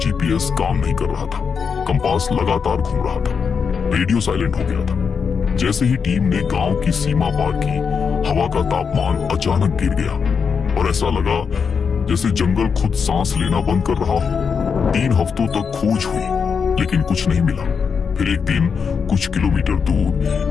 काम नहीं कर रहा था, कंपास लगातार घूम रहा था, रेडियो साइलेंट हो गया था। जैसे ही टीम ने गांव की सीमा पार की, हवा का तापमान अचानक गिर गया और ऐसा लगा जैसे जंगल खुद सांस लेना बंद कर रहा हो। 3 हफ्तों तक खोज हुई लेकिन कुछ नहीं मिला। फिर एक दिन कुछ किलोमीटर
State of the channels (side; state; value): right; quieter; 6.1 dB